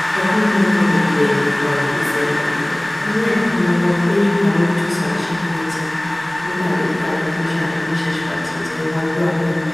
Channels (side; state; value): right; noise; rumble, 24 dB below the sound